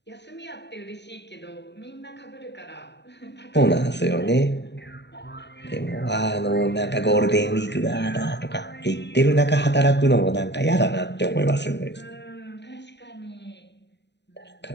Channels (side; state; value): right; late; 0.50 ms